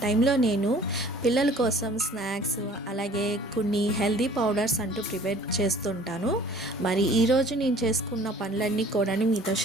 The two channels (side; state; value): both; normal; correlation 0.51